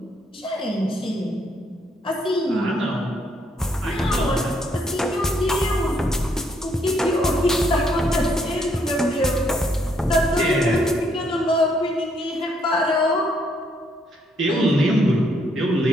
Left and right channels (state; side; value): normal; both; correlation 0.71